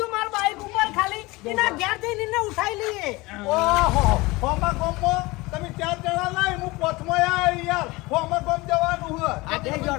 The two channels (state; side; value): quieter; right; 22.4 dB